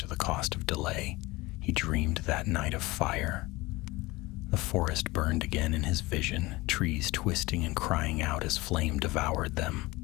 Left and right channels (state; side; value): quieter; right; 21.4 dB